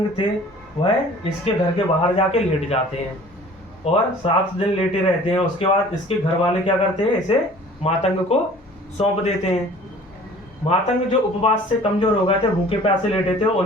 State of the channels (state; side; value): normal; both; correlation 0.48